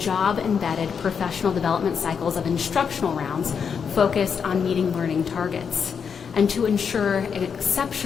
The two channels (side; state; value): right; quieter; 6.6 dB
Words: professional development cycles of instructional rounds focused on meeting learning targets. And to ensure